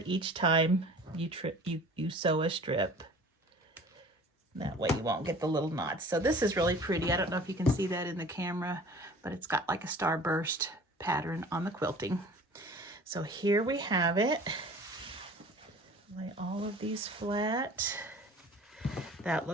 each time you sew a strip. That way you won't get the little knots. So this is really pretty. I don't know if you can see that in the camera, but it's got like a starburst pattern on the quilting. So here we have it. Lay all of these flat. That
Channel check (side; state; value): both; normal; correlation 0.45